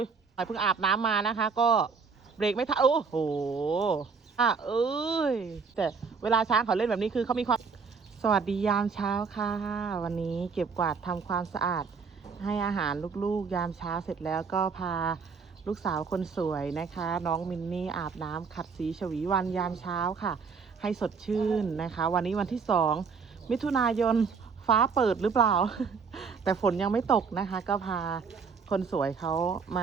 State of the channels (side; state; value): left; quieter; 5.4 dB